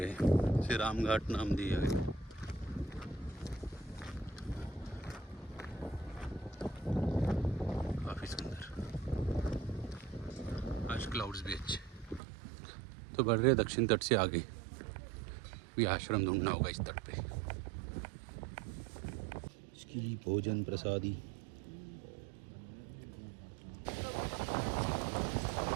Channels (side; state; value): left; drops out; at 12.2 s